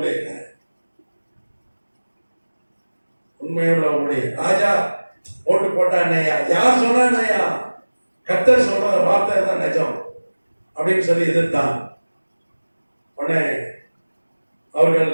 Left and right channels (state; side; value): inverted; both; correlation -1.00